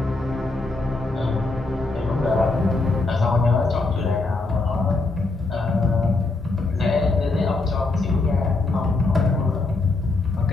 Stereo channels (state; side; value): quieter; right; 3.3 dB